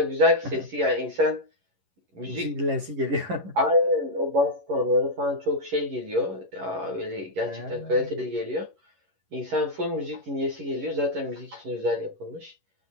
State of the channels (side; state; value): left; late; 11 ms